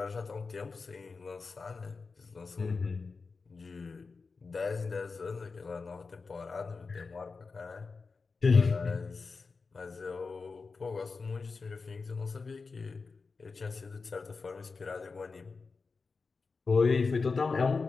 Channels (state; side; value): quieter; right; 4.5 dB